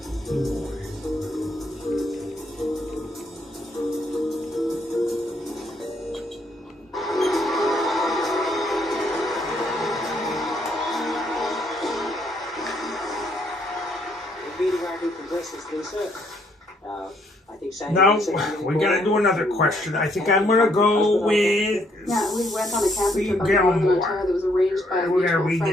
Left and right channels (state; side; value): normal; both; correlation 0.70